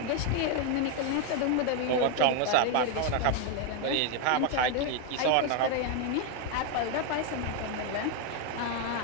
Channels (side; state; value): both; different; correlation 0.01